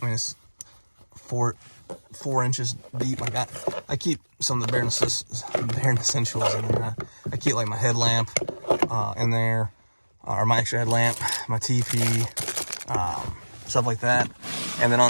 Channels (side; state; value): both; inverted; correlation -1.00